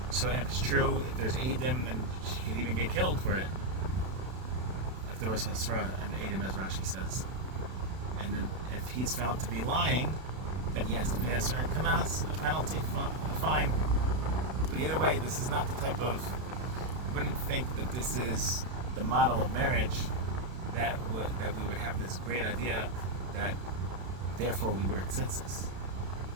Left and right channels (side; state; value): left; late; 32 ms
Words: it's true, if there's Eidim, then she could even get killed for it. If there was Hasra and Eidim, as Rashi says. And then if he's found to be lying, then he has to pay a certain kanas, a penalty, a fine. But either way, this is not the type of, you wouldn't think that this is the model of marriage that we would have this great idea that therefore we wear tzitzis.